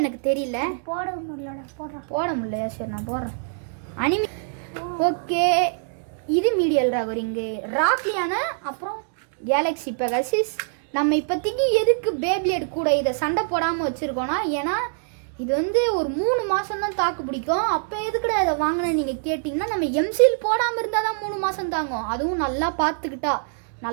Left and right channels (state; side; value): silent; left; digital silence